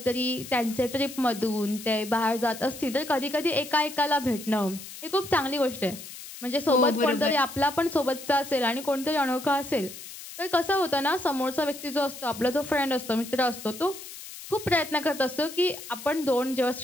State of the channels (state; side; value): noise; left; hiss, 13 dB below the sound